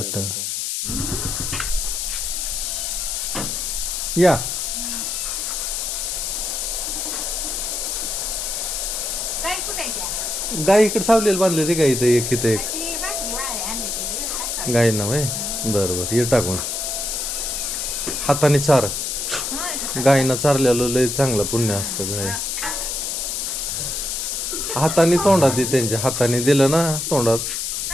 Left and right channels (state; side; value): noise; left; hiss, 2 dB below the sound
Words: या काय कुठे गाय इकडे सावलेलं बांधले ते गाय इथं एक इथं एक गाय ना वय बरं ये टाकून हाताने चार गायीनं चारलेलं लय चांगलं पुण्य असतं. गाय हाताने तोंडात त्यांच्या हाताने दिलं ना तोंडात.